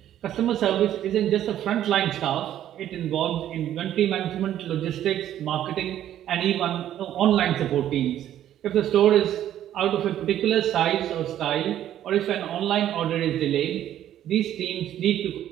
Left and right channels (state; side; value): quieter; left; 11.6 dB